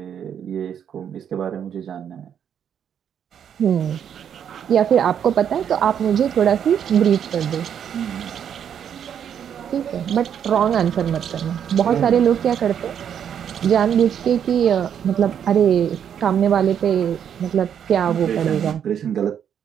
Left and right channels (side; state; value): left; quieter; 8.6 dB